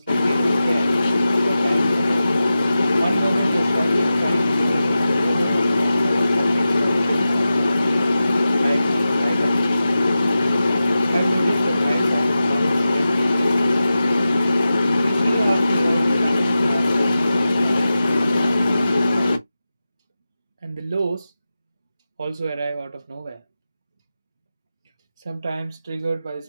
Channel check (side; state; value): both; inverted; correlation -0.93